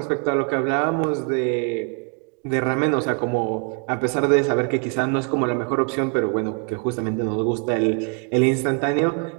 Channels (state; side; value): quieter; left; 37.8 dB